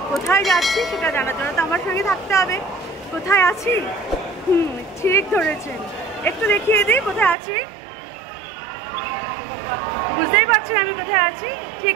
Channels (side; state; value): left; drops out; at 7.4 s